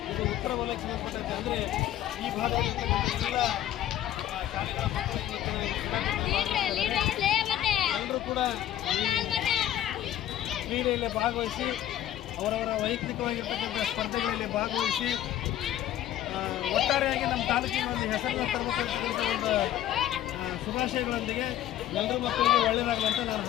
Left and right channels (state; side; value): quieter; right; 12.4 dB